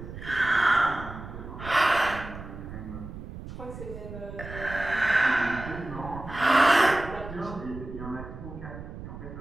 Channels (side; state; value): right; noise; rumble, 11 dB below the sound